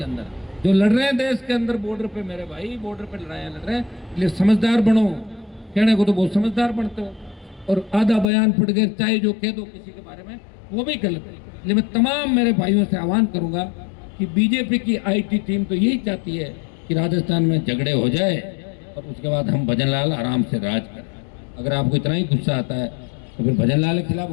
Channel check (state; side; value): drops out; right; at 8.2 s